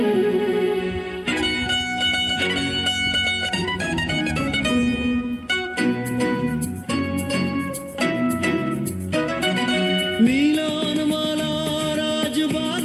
মিলন মালার আজ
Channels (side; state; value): both; identical; correlation 1.00